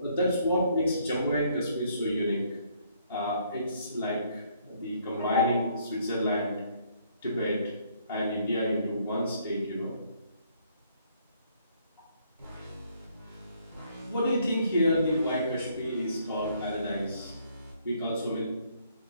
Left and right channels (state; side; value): inverted; both; correlation -0.66